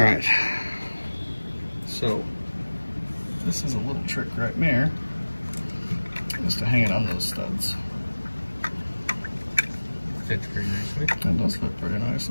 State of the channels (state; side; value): inverted; both; correlation -1.00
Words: so this is a little trick right there. Just to hang it on those studs. Fits pretty nicely. That does fit pretty